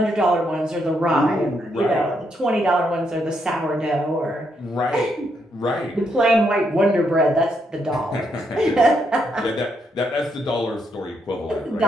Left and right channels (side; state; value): both; normal; correlation 0.77